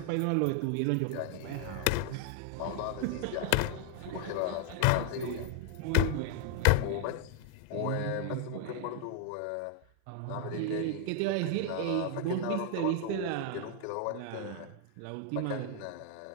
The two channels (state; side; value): different; both; correlation 0.00